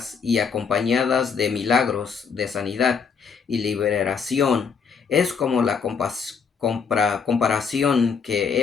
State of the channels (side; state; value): right; quieter; 6.1 dB